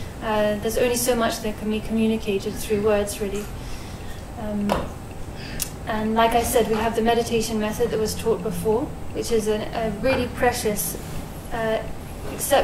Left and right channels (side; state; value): both; identical; correlation 1.00